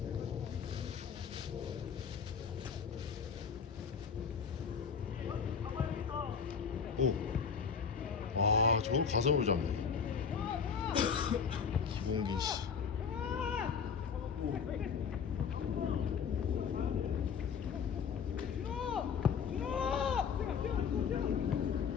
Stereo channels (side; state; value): right; quieter; 6.5 dB